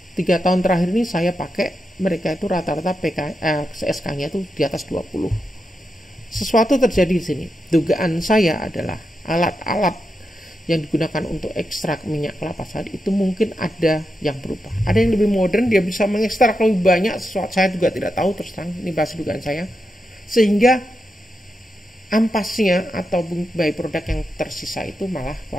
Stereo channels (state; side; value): normal; both; correlation 0.87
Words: 3 tahun terakhir ini saya pakai, mereka itu rata-rata CSK-nya itu di atas 20. Sesuatu terjadi di sini. Dugaan saya adalah alat-alat yang digunakan untuk ekstrak minyak kelapa sawit itu mungkin ada yang berubah. Ada yang lebih modern, dia bisa mengekstrak lebih banyak, sesuatu saya juga tidak tahu terus terang, ini bahasa dugaan saya. Sehingga ampasnya atau byproduct yang tersisa itu malah